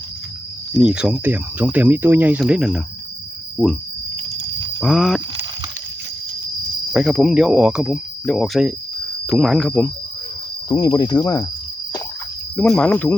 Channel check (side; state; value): both; normal; correlation 0.89